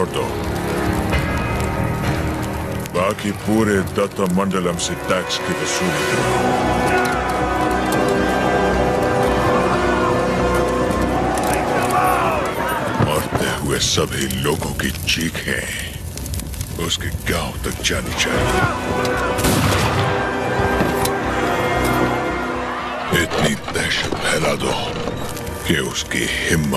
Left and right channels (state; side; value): identical; both; correlation 1.00